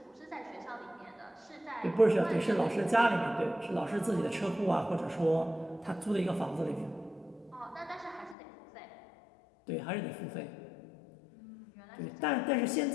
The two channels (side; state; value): right; drops out; at 8.3 s